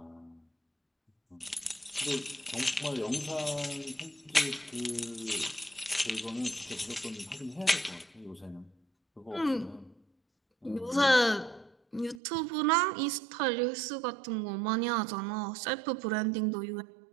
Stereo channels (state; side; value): drops out; left; at 12.2 s